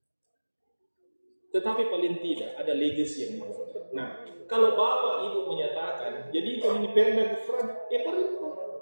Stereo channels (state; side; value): inverted; both; correlation -1.00